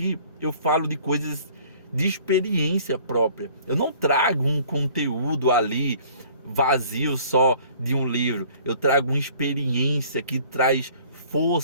eu falo de coisas de experiência própria. Eu não trago um conteúdo ali vazio só de um livro. Eu trago uma experiência que traz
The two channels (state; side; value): inverted; both; correlation -0.53